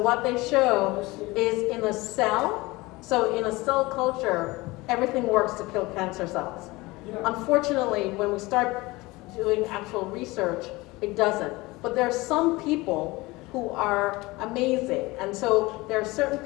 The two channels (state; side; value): quieter; right; 21.8 dB